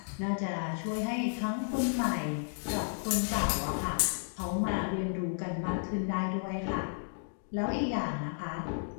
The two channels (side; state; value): right; silent; digital silence